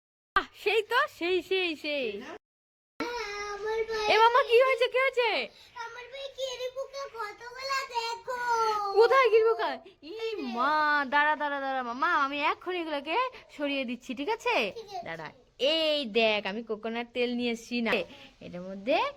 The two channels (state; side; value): identical; both; correlation 1.00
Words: সেই তো, সেই। আমার ভাই, এ মামা, কি হয়েছে, কি হয়েছে? আমার ভাই কেড়ে পোকা কতগুলা দেখো। কোথায় গিরবো কার? ই মা, দাঁড়া মামা, আমি এক্ষুনি এগুলোকে সরিয়ে দিচ্ছি, ঠিক আছে? ঠিক আছে। দাঁড়া, এই দেখ, আমি কোকোনাট তেল নিয়ে এসছি না, এটার মধ্যে